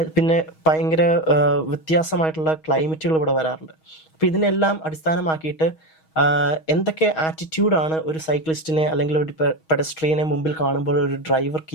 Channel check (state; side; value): late; right; 6.3 ms